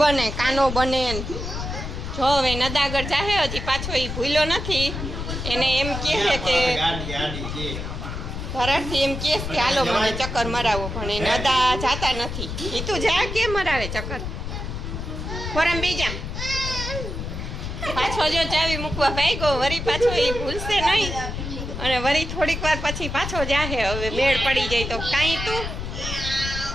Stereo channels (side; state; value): left; noise; rumble, 5 dB below the sound